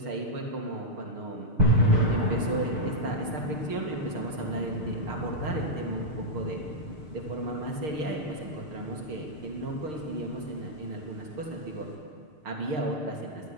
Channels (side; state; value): left; late; 6.6 ms